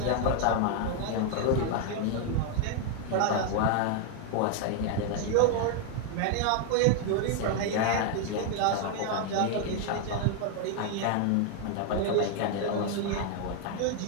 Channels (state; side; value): different; both; correlation 0.00